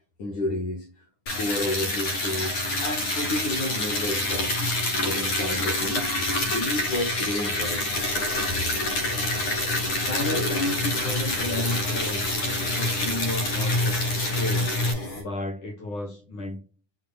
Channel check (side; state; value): right; late; 9.8 ms